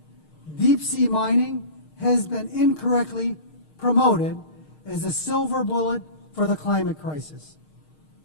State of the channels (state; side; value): late; right; 6.5 ms